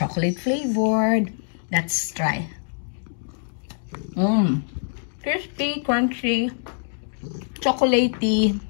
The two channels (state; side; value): silent; right; digital silence